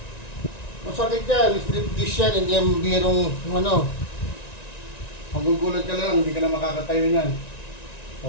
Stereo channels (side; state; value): right; late; 1.9 ms